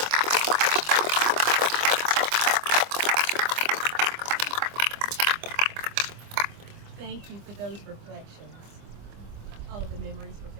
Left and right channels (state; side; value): late; left; 25 ms